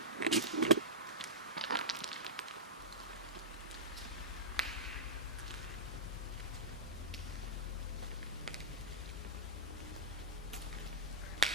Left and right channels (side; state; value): both; normal; correlation -0.11